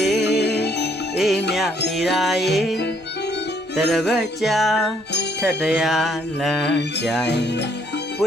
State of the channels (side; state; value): both; normal; correlation 0.67